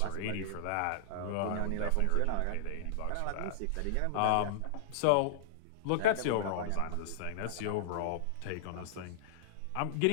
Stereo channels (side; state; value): both; different; correlation -0.01